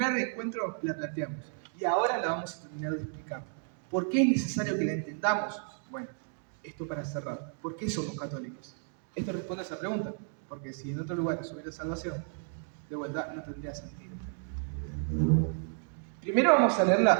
encuentro la planteamos, y ahora la vamos a terminar de explicar. ¿Por qué es necesario que la entendamos? Bueno, esto para cerrar. ¿Por qué somos católicos? Esto responde a esa pregunta, porque si en otro lugar hubiera salvación, de vuelta no tendría sentido. Primero vamos a leer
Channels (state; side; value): silent; left; 56 dB below the other